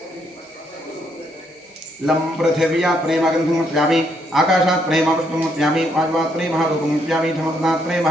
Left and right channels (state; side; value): normal; both; correlation 0.73